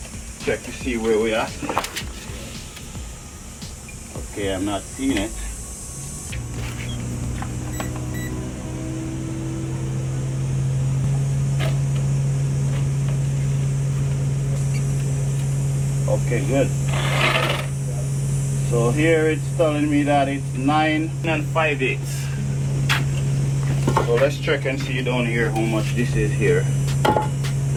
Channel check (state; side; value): identical; both; correlation 1.00